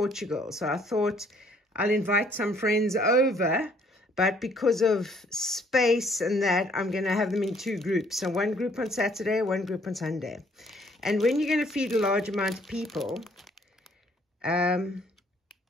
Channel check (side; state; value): both; normal; correlation 0.63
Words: So I thought I'll invite some friends over, but because of space and that, I'm going to have them in two groups. So one group on Saturday, one group on Sunday. And when you're going to feed a large amount of people, the